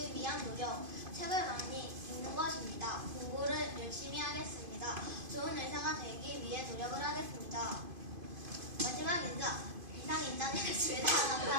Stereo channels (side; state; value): left; late; 2.5 ms